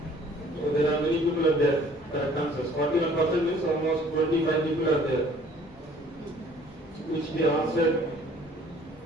so there are many people are there. Correct answers. 41% means almost 25 people are there, which they answered.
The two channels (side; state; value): both; normal; correlation 0.54